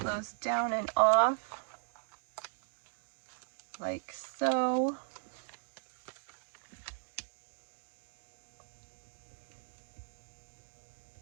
those down and off like so.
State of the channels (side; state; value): left; silent; digital silence